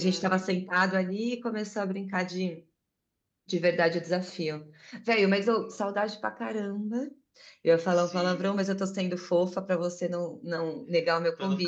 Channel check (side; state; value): both; identical; correlation 1.00